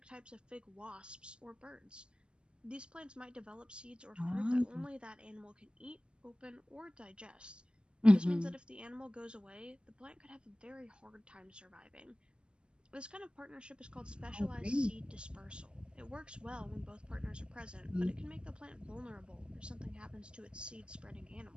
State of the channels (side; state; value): left; late; 0.051 ms